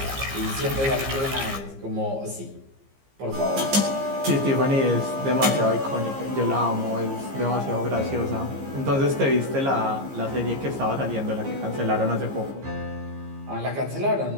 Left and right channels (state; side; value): late; left; 15 ms